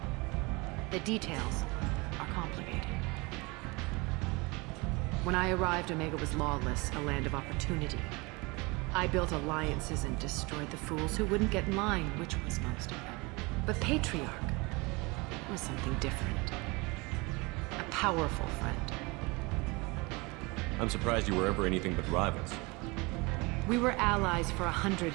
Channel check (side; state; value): left; quieter; 25.9 dB